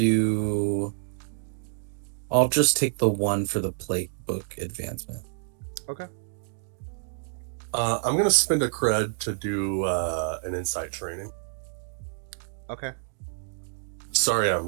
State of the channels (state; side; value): silent; left; digital silence